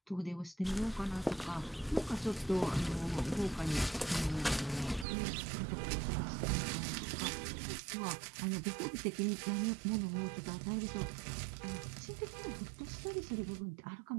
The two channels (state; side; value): drops out; left; at 5.1 s